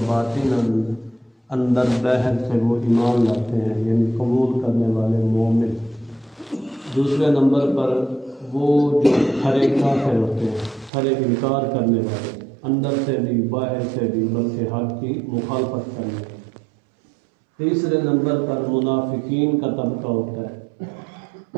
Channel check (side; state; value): left; drops out; at 10.9 s